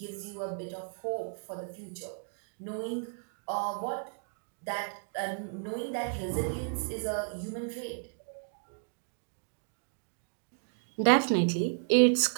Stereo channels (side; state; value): left; silent; 55 dB below the other